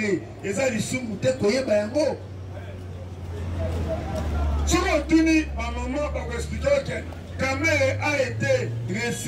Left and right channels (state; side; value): identical; both; correlation 1.00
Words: et ça, ils sont moutés, Koyebayango. Si on tourne, ma maman va expliquer que Kamere a été